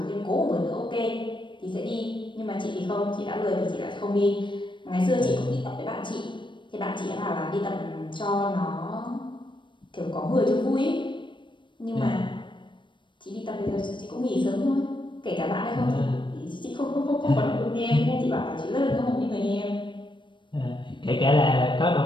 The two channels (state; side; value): late; right; 0.23 ms